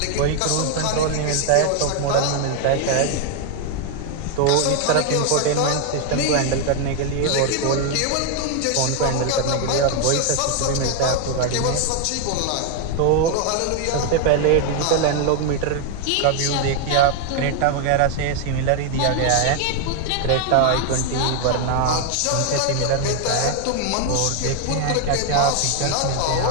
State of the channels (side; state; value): both; different; correlation 0.01